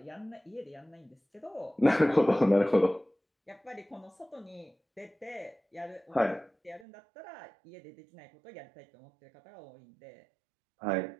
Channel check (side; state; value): left; drops out; at 6.9 s